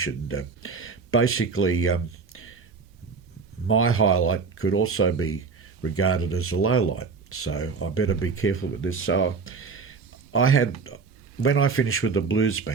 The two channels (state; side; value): quieter; left; 5.0 dB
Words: Basically, my highlight could also be regarded as a low light, so I better be careful with this. So when I finished with the blues